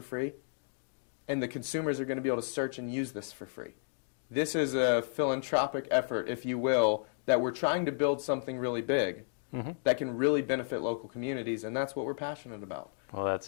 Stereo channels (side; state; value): right; silent; digital silence